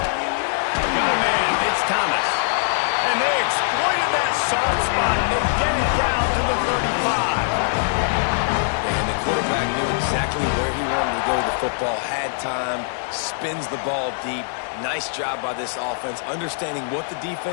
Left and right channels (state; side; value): silent; right; 64 dB below the other